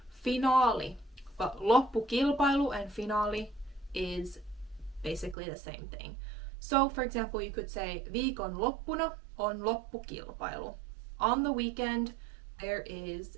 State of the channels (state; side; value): drops out; left; at 5.4 s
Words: Finaali. But loppukilpailu and finaali is basically the same thing. So for example, you could say viikon loppuna on loppukilpailu. On the weekend, there is